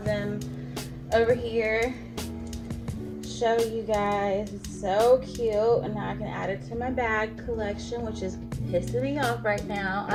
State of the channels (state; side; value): identical; both; correlation 1.00